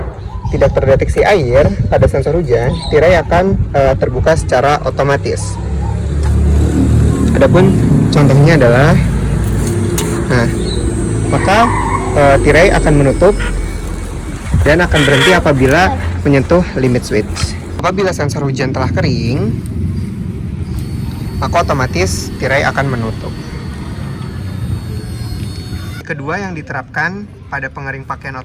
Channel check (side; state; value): both; identical; correlation 1.00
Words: tidak terdeteksi air pada sensor hujan, tirai akan terbuka secara otomatis. Adapun contohnya adalah, maka tirai akan menutup dan akan berhenti apabila menyentuh limit switch. Apabila sensor hujan telah kering, maka otomatis tirai akan menutup. Kedua yang diterapkan pada pengering pakaian